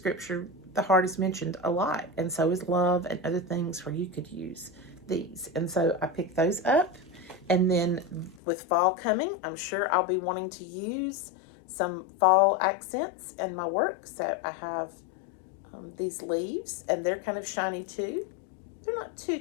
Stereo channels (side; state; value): right; drops out; at 8.4 s